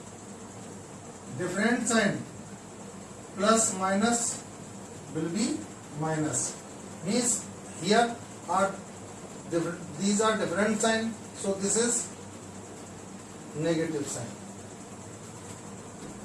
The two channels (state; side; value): identical; both; correlation 1.00